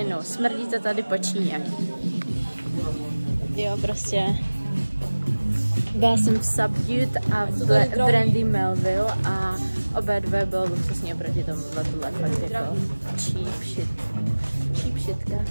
Smrdí to tady po Číně. Jo, prostě. Byla jsem v Subdued a v Brandy Melville a obě dvě bylo luxusní oproti tomu, tohle fakt jako cheap shitka,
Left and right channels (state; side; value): inverted; both; correlation -1.00